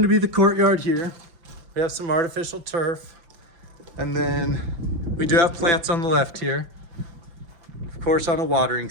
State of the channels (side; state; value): left; late; 5.9 ms